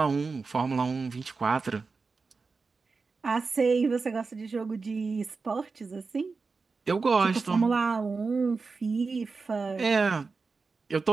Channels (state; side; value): quieter; left; 4.4 dB